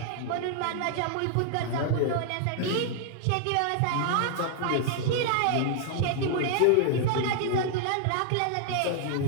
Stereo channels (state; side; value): different; both; correlation 0.00